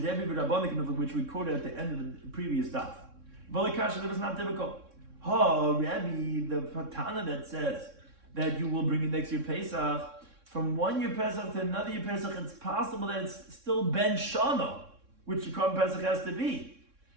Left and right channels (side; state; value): left; late; 3.6 ms